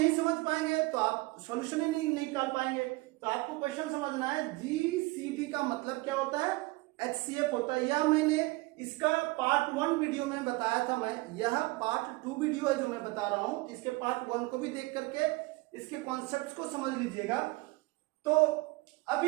समझ पाएंगे तो आप सॉल्यूशन ही नहीं निकाल पाएंगे। तो आपको क्वेश्चन समझना है, जीसीडी का मतलब क्या होता है, एचसीएफ होता है। यह मैंने इसका पार्ट 1 वीडियो में बताया था, मैं यह पार्ट 2 वीडियो है जो मैं बता रहा हूं। इसके पार्ट 1 को भी देख करके इसके कॉन्सेप्ट्स को समझ लीजिएगा। तो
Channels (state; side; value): quieter; left; 22.7 dB